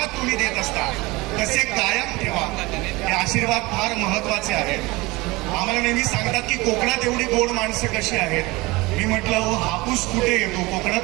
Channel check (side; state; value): left; quieter; 22.3 dB